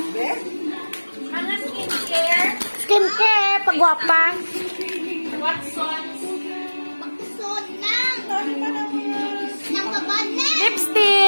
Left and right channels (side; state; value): both; inverted; correlation -1.00